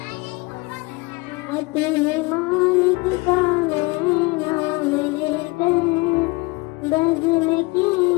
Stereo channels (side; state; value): right; quieter; 25.1 dB